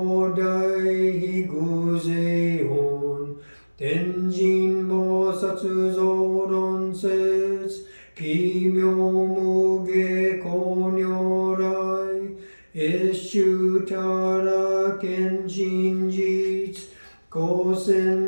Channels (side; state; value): both; inverted; correlation -1.00